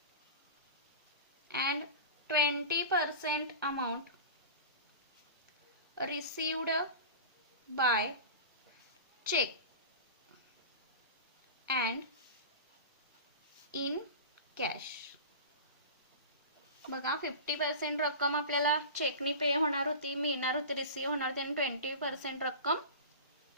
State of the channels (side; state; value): both; inverted; correlation -0.31